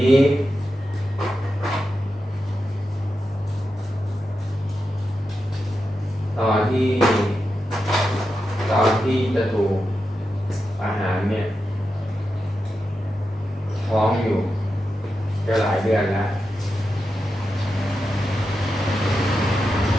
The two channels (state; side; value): normal; both; correlation 0.89